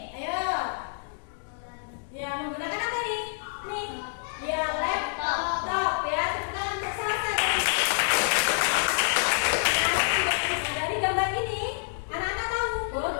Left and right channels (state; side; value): silent; right; digital silence